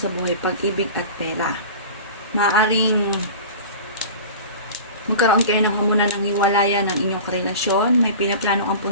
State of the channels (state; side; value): inverted; both; correlation -0.36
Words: buhay, pag-ibig at pera. Maaring magkaroon kayo ng hamunan ng hiwalayan ng inyong karelasyon, may pinaplano